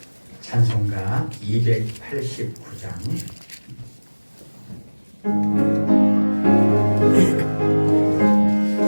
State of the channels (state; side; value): inverted; both; correlation -1.00